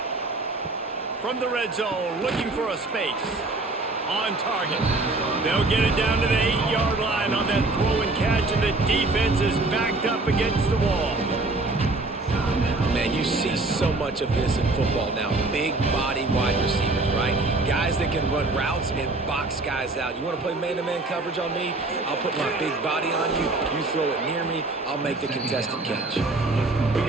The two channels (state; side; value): quieter; left; 3.1 dB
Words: From the red zone, looking for a space. On target. They'll get it down to the 8-yard line on that throw and catch, and the defense is backed up against the wall. Man, you see so much of this in football now. Big body wide receivers, right? Guys that can run routes and box guys out. You want to play man-to-man coverage on me? I'll put my big body on you. You throw it near me, I'll make the contested catch. We